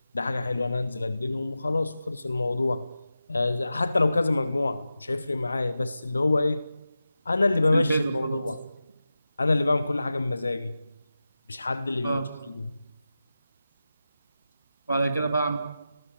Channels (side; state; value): both; inverted; correlation -0.93